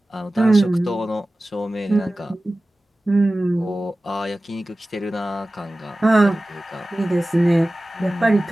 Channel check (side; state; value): both; normal; correlation 0.96